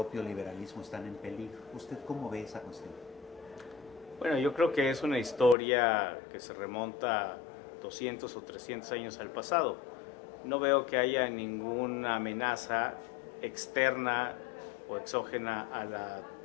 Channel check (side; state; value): right; drops out; at 5.6 s